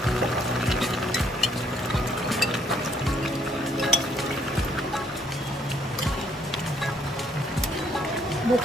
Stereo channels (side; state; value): both; normal; correlation 0.67